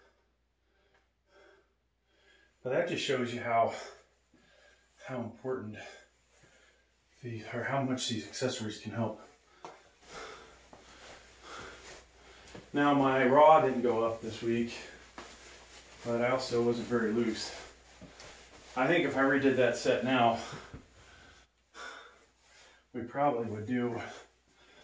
But that just shows you how important or how much these accessories can help. Now my raw didn't go up this week, but I also wasn't very loose. I think if I redid that set now, we probably would do,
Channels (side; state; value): both; identical; correlation 1.00